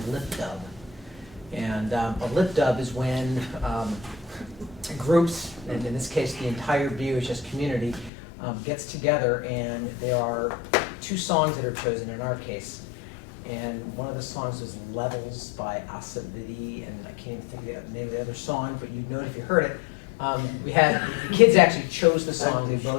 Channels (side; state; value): right; drops out; at 8.1 s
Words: lip dub. And a lip dub is when groups, and in this case the entire BUHS community, gets together, and there are 2 songs that are chosen in our case. And one of the songs is Levels by Asavidi, and I can't even think of the name of the other song, but you'd know it if you heard it. We had, the kids actually chose the songs, they